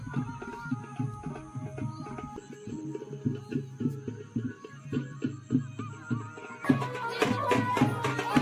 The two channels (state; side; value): identical; both; correlation 1.00